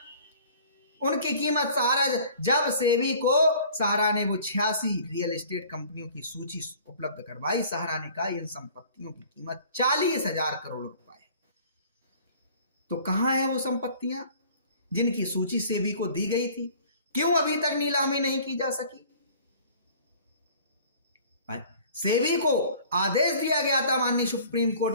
उनकी कीमत सहारा, जब सेबी को सहारा ने वो 86 रियल एस्टेट कंपनियों की सूची उपलब्ध करवाई, सहारा ने कहा इन संपत्तियों की कीमत 40,000 करोड़ रुपए है। तो कहां है वो संपत्तियां जिनकी सूची सेबी को दी गई थी? क्यों अभी तक नीलामी नहीं की जा सकी? सेबी को आदेश दिया गया था माननीय सुप्रीम कोर्ट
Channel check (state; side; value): inverted; both; correlation -0.49